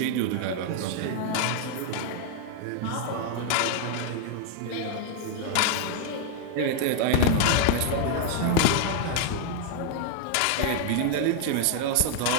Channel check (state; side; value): different; both; correlation 0.00